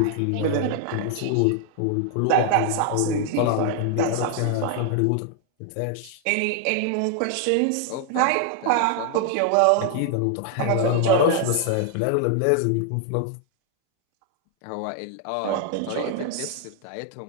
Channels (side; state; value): both; different; correlation 0.00